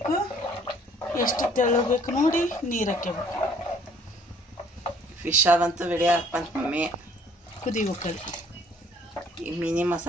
ಎಷ್ಟು ತೆಳ್ಳಬೇಕು ನೋಡಿ ನೀರು ಹಾಕ್ಯಬೇಕು. ಫಿಶ್ ಅದಂತೂ ರೆಡಿ ಹಾಕ್ಬಂತ ಮಮ್ಮಿ. ಕುದಿಬೇಕಲ್ಲಿ. ಈ ಮೀನಿ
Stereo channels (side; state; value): both; normal; correlation 0.58